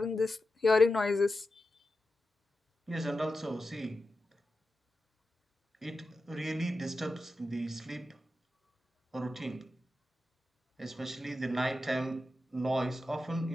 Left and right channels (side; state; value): both; normal; correlation 0.91